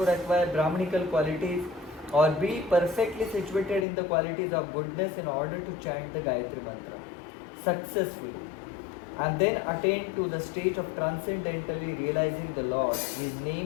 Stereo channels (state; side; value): drops out; right; at 3.9 s